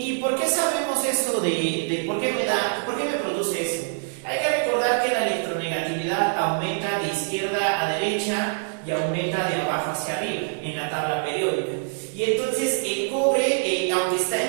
por qué sabemos esto de por qué me produce eso? Hay que recordar que la electronegatividad aumenta de izquierda a derecha y aumenta de abajo hacia arriba en la tabla periódica. Y entonces el cobre, aunque está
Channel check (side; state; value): left; silent; digital silence